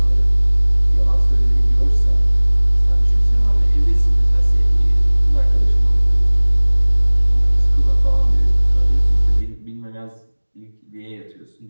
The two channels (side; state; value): both; inverted; correlation -1.00